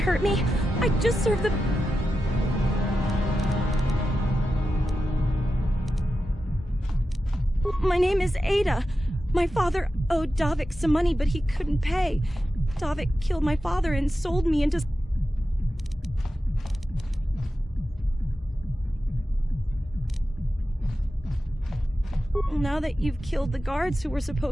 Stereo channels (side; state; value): both; normal; correlation 0.91